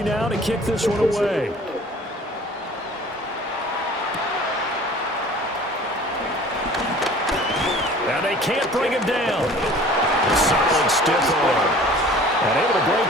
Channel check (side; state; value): both; normal; correlation 0.47